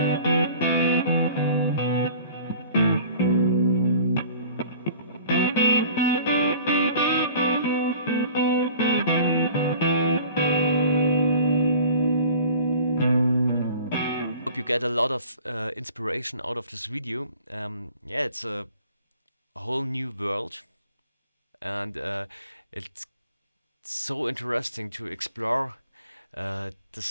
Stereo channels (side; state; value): both; inverted; correlation -0.47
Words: Hope you get a lot of inspiration out of this video. Yeah, it's a whole new world, and it's so interesting to explore